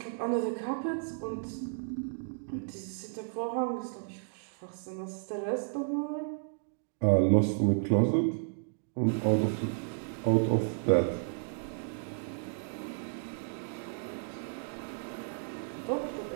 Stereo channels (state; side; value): silent; left; digital silence